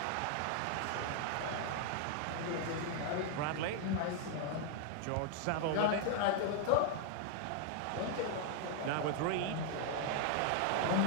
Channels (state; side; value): different; both; correlation 0.00